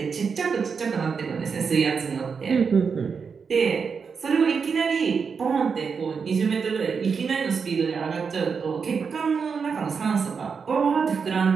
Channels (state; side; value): quieter; left; 5.8 dB